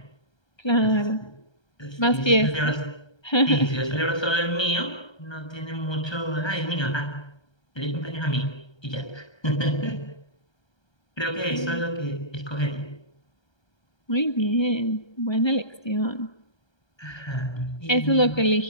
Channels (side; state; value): right; late; 1.3 ms